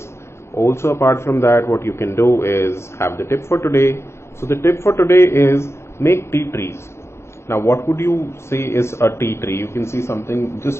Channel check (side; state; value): right; late; 0.13 ms